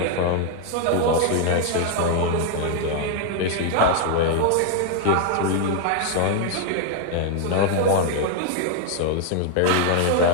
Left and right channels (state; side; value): different; both; correlation 0.00